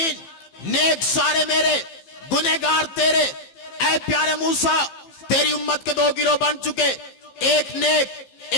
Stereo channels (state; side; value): late; right; 15 ms